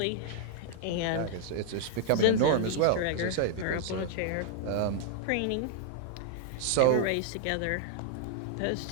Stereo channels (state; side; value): different; both; correlation -0.01